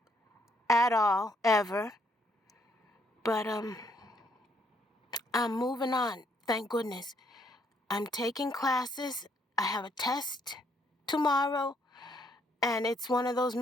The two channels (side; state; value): both; normal; correlation 0.70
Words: at all, ever. But I'm moving on, thank goodness. I'm taking classes. I have a test tomorrow. And it's one of those